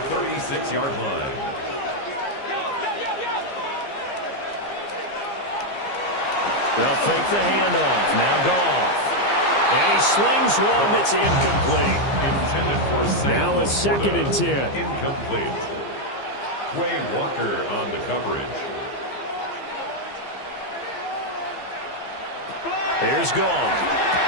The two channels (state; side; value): late; right; 15 ms